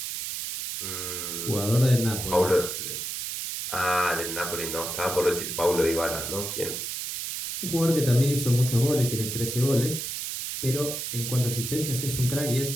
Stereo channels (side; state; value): right; noise; hiss, 5 dB below the sound